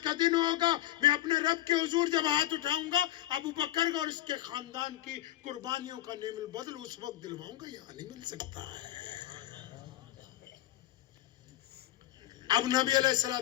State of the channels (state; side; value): quieter; right; 14.3 dB